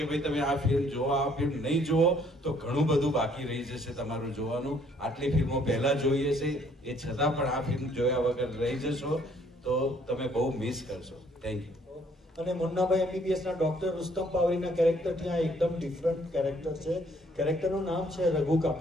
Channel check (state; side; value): normal; both; correlation 0.63